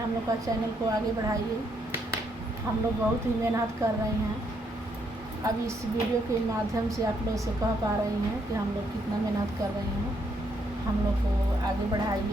लोग का चैनल को आगे बढ़ाइए। हम लोग बहुत ही मेहनत कर रहे हैं। अब इस वीडियो के माध्यम से आप लोग से कह पा रही हैं कि हम लोग कितना मेहनत कर रहे हैं। हम लोग को आगे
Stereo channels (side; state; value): both; normal; correlation 0.74